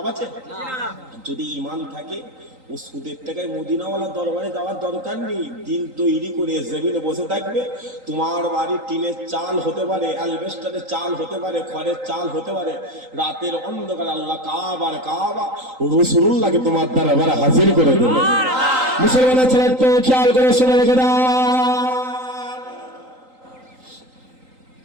আছে? যদি ইমান থাকে ও সুদের টাকায় মদিনাওয়ালা দরবারে যাওয়ার দরকার নেই। দিল তৈরি করে জমিনে বসে থাকবে। তোমার বাড়ি টিনের চাল হতে পারে, অ্যালবেস্টারের চাল হতে পারে, খড়ের চাল হতে পারে। রাতের অন্ধকার আল্লাহ কাবার কাবা রাসূলুল্লাহকে তোমার দরবারে হাজির করে দেবে। মুসলমানের ছেলে তো খেয়াল করে শুনে রেখে দাও।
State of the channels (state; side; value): late; left; 3.9 ms